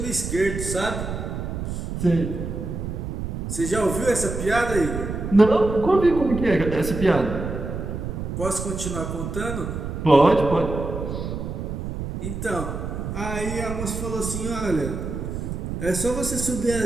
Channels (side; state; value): right; noise; rumble, 5 dB below the sound